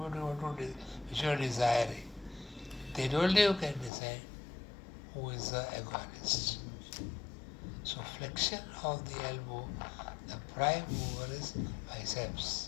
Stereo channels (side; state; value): right; drops out; at 3.9 s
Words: you want to which you are desiring. Then only you can decide who is the agonist. So flexion of the elbow, the prime mover is biceps